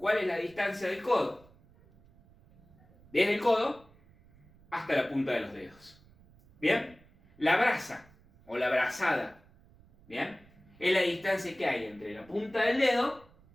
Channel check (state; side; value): noise; right; rumble, 27 dB below the sound